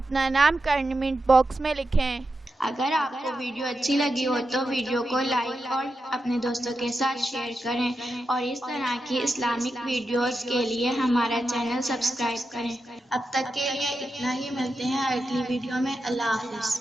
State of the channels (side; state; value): both; normal; correlation 0.89